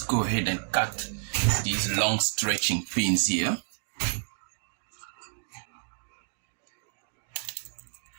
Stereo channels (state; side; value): silent; left; digital silence